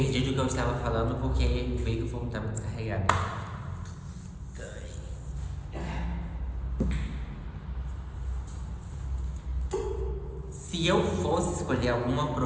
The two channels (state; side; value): identical; both; correlation 1.00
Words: do que eu estava falando porque veio que o fone estava descarregado. Se eu fosse escolher alguma